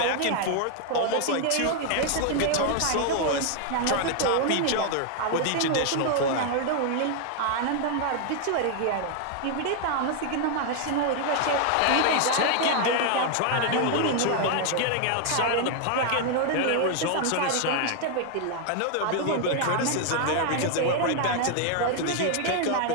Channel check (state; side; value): different; both; correlation 0.00